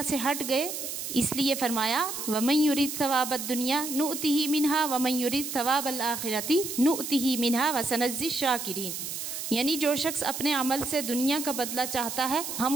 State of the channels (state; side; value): noise; right; hiss, 6 dB below the sound